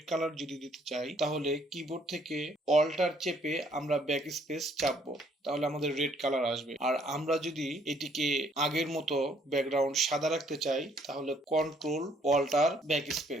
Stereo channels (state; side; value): normal; both; correlation 0.65